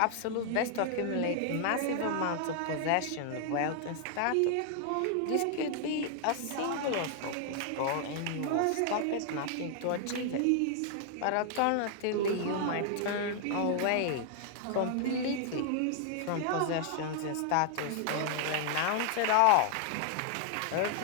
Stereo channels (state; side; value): different; both; correlation 0.00